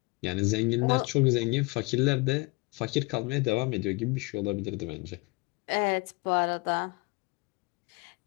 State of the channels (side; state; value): right; quieter; 26.8 dB